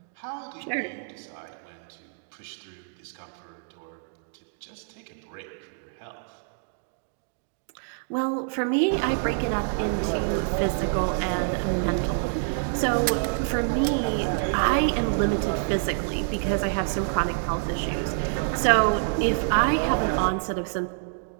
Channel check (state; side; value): silent; left; digital silence